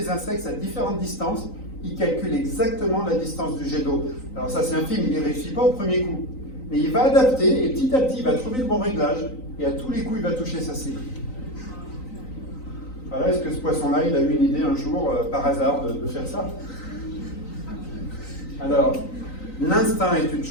insectes à différentes distances, il calcule exactement la distance du jet d'eau. Alors ça, c'est un film, il n'y réussit pas au premier coup. Mais il va adapter, et petit à petit, il va trouver le bon réglage, et à tous les coups, il va toucher sa cible. Voilà, est-ce que ce poisson-là, il a eu une idée un jour, par hasard, de faire ça? Alors, l'instinct est une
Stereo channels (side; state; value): right; late; 3.9 ms